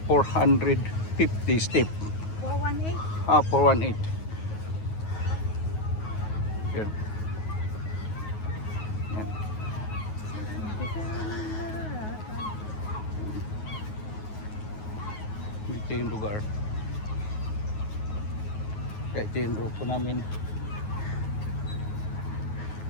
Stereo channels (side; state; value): right; late; 9.4 ms